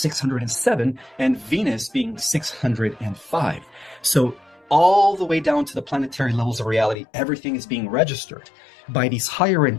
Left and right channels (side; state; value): right; drops out; at 7.0 s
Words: and Venus being 605. So all the way down to the planetary levels of reality, everything is being registered by these higher